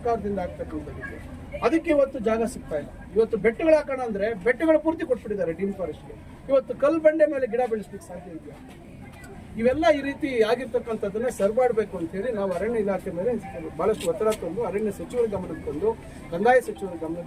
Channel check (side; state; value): both; identical; correlation 1.00